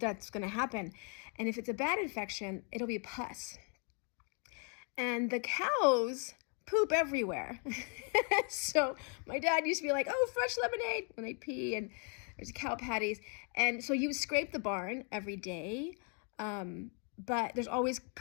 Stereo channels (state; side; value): quieter; right; 39.8 dB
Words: going to happen. And if it's a bad infection, it'll be pus. And the cows poop everywhere. So my dad used to be like, oh, fresh lemonade, and they'd pee, and there's cow patties. And so you scrape the barn every day, but there's always